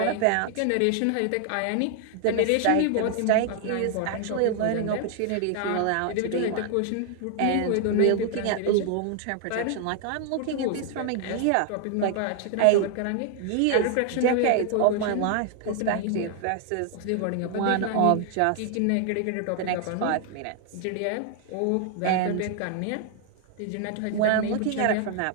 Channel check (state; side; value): different; both; correlation 0.00